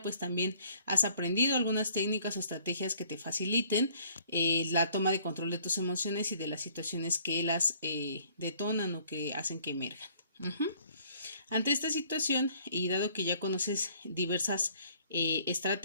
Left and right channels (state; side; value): inverted; both; correlation -0.58